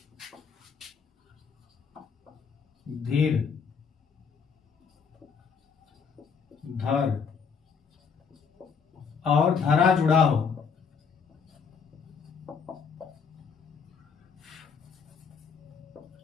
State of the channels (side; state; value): right; quieter; 6.1 dB